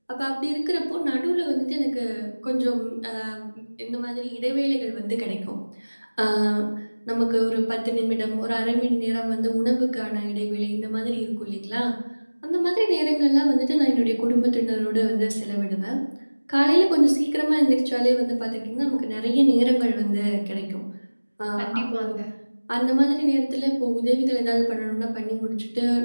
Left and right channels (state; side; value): inverted; both; correlation -1.00